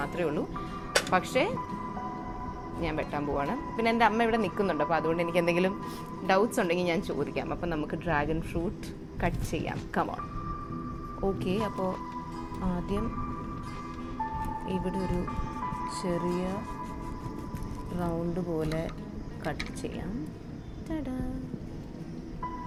ഉള്ളൂ. പക്ഷേ ഞാൻ വെട്ടാൻ പോവാണ്. പിന്നെ എൻ്റെ അമ്മ ഇവിടെ നിൽക്കുന്നുണ്ട്, അപ്പോൾ അതുകൊണ്ട് എനിക്ക് എന്തെങ്കിലും ഡൗട്ട്സ് ഉണ്ടെങ്കിൽ ഞാൻ ചോദിക്കാം. അപ്പം നമുക്ക് ഡ്രാഗൺ ഫ്രൂട്ട് കട്ട് ചെയ്യാം. കമോൺ. ഓക്കെ, അപ്പോൾ ആദ്യം ഇവിടെ ഒരു ചെറിയ റൗണ്ട് പോലെ കട്ട് ചെയ്യാം.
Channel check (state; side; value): identical; both; correlation 1.00